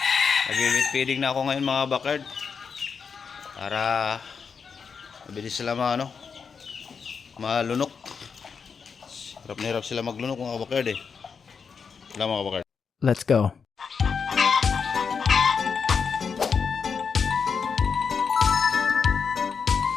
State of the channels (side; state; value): right; quieter; 5.9 dB